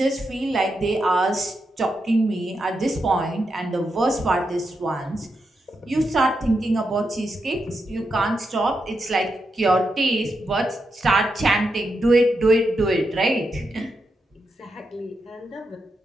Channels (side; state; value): both; normal; correlation 0.85